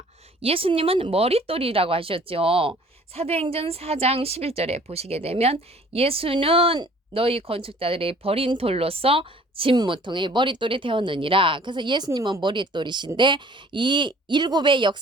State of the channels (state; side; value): normal; both; correlation 0.53